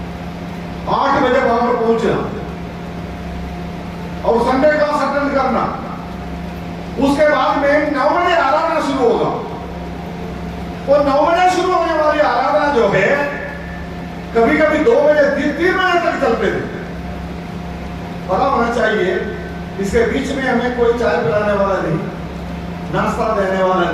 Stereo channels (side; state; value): both; identical; correlation 1.00